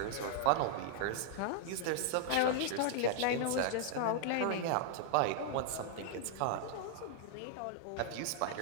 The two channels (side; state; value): both; different; correlation -0.01